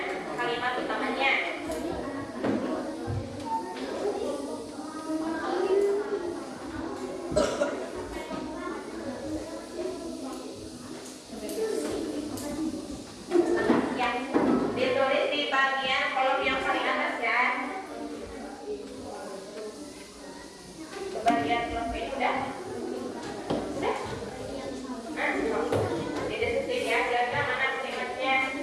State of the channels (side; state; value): both; identical; correlation 1.00